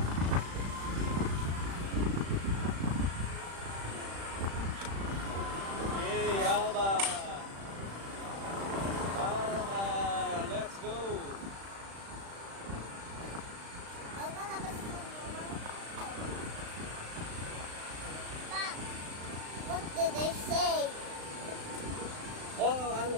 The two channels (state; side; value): late; left; 36 ms